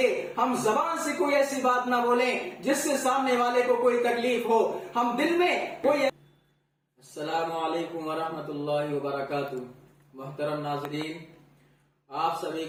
ہم زبان سے کوئی ایسی بات نہ بولیں جس سے سامنے والے کو کوئی تکلیف ہو، ہم دل میں کوئی۔ السلام علیکم ورحمۃ اللہ وبرکاتہ۔ محترم ناظرین، آپ سبھی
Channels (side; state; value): both; identical; correlation 1.00